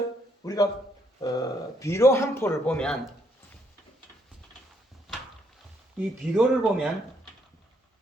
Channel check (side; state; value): both; normal; correlation 0.72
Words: 우리가 비료 한 포를 보면 이 비료를 보면